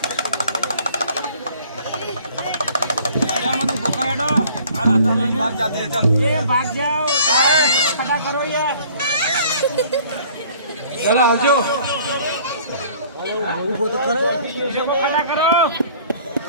भाग जाते हैं, चल ये भाग जाओ, खड़ा करो ये। जरा आजो वो तो करो, खड़ा करो।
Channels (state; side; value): inverted; both; correlation -0.53